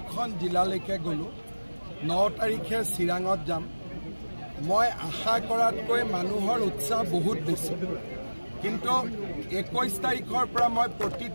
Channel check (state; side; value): inverted; both; correlation -1.00